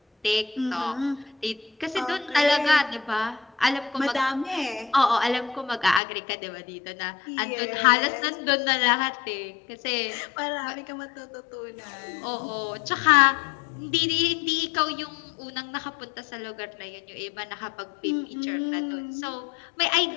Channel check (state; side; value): drops out; right; at 6.0 s